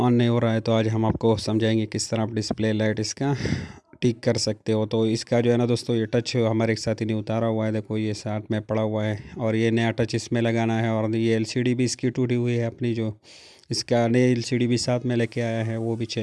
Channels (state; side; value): identical; both; correlation 1.00